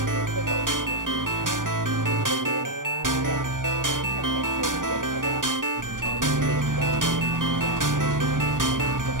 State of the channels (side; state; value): left; late; 0.89 ms